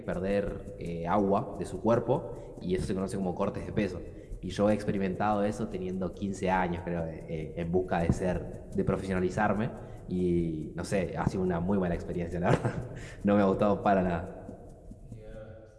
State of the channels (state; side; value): identical; both; correlation 1.00